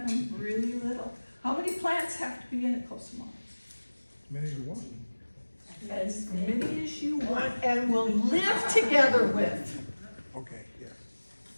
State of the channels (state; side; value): inverted; both; correlation -1.00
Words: them really little. How many plants have to be in a Kusamono? Many as you want. As many as you want and will live together with. Okay, yes.